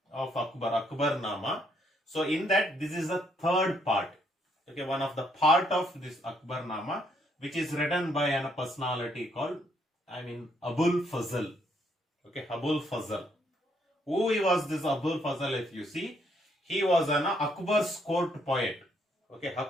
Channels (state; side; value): normal; both; correlation 0.71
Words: of Akbar Nama. So in that, this is a third part. Okay, one of the part of this Akbarnama, which is written by a personality called, Abul Fazl. Okay, Abul Fazl. Who he was this Abul Fazl? If you see, he was an Akbar's court poet. Okay,